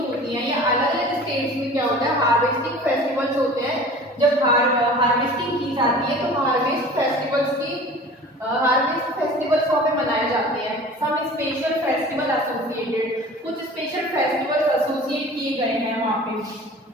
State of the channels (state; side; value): normal; both; correlation 0.42